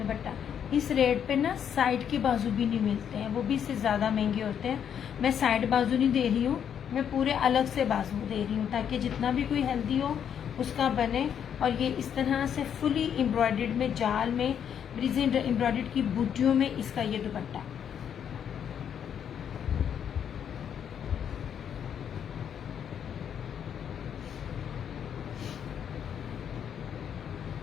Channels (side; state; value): right; quieter; 8.5 dB